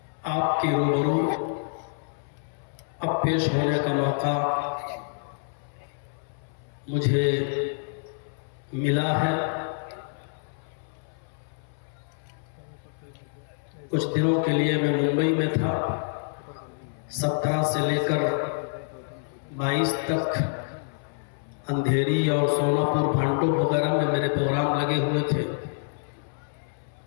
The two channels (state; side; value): silent; right; 60 dB below the other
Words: आपके रूबरू अब पेश होने का मौका मुझे मिला है। कुछ दिनों के लिए मैं मुंबई में था। 17 से लेकर 22 तक अंधेरी और सोनापुर, भांडो वगैरह में मेरे प्रोग्राम लगे हुए थे।